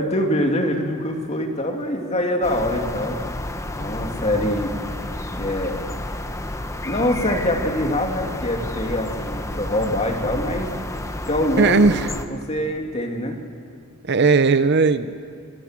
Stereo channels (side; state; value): both; normal; correlation 0.33